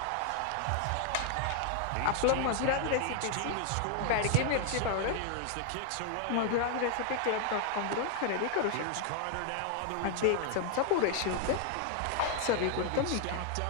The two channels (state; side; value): different; both; correlation 0.00